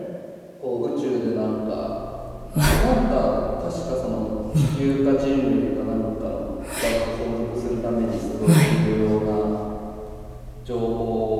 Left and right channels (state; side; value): identical; both; correlation 1.00